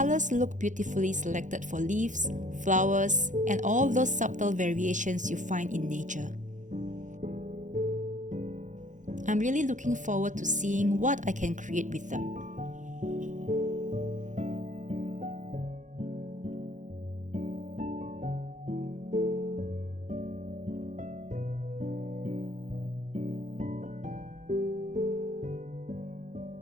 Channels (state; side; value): late; left; 0.36 ms